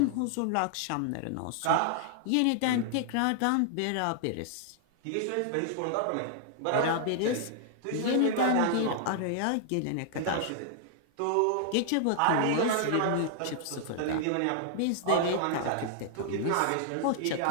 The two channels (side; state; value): both; different; correlation -0.01